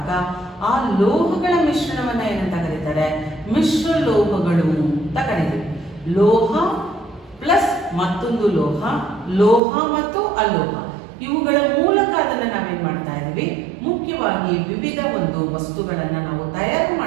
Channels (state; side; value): drops out; left; at 9.6 s